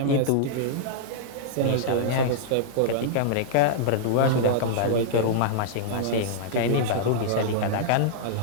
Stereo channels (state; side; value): different; both; correlation -0.02